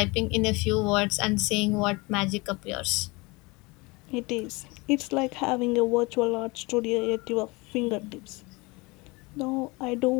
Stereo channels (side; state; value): right; quieter; 25.5 dB